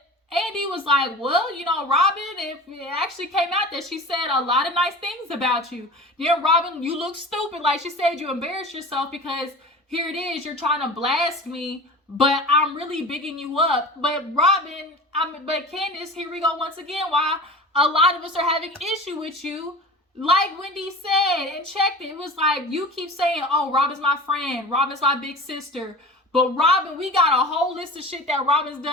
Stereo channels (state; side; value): normal; both; correlation 0.36